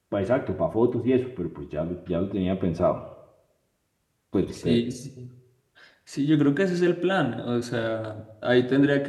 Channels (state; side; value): identical; both; correlation 1.00